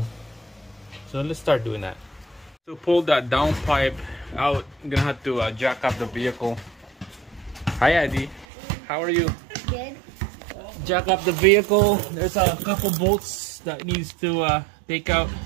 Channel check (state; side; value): drops out; left; at 8.5 s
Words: So let's start doing that. To pull that downpipe out, I'm gonna have to jack up the vehicle. Hi Eddie, how are you? Good. Jack up the vehicle. There's a couple bolts that needs to take out.